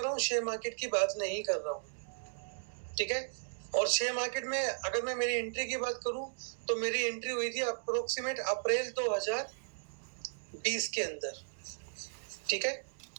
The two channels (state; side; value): silent; left; digital silence